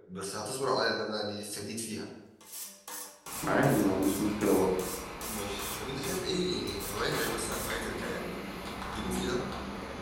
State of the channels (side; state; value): both; identical; correlation 1.00